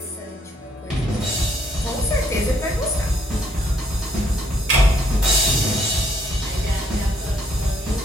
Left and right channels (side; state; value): both; normal; correlation 0.69